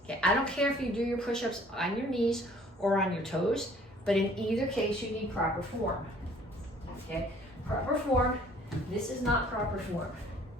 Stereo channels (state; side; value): normal; both; correlation 0.56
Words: Okay, I don't care if you do your push-ups on your knees or on your toes, but in either case, you need proper form. Okay, proper form. This is not proper form.